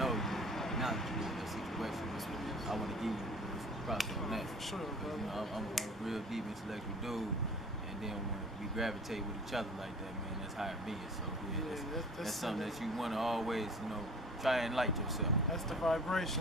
you acknowledge you in that situation. I want to give you props on that. For sure, bro. You know, I'm a real deep intellectual dude. And then when we gravitate with each other like that, man, that's how it be. So yeah, that's something that you want to always, you know, try and enlighten yourself. That's the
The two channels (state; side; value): normal; both; correlation 0.45